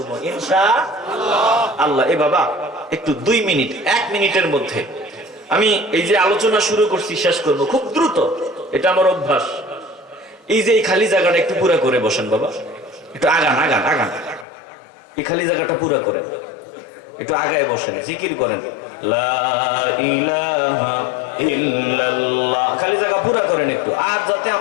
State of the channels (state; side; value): drops out; right; at 14.5 s